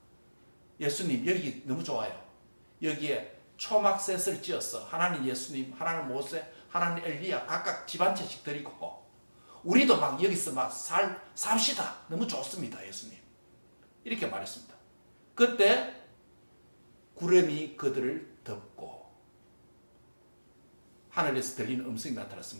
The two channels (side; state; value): both; inverted; correlation -1.00